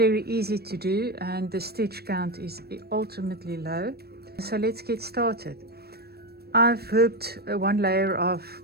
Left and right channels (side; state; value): left; late; 0.46 ms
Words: easy to do and the stitch count is ultimately low. So let's get started. I've hooped one layer of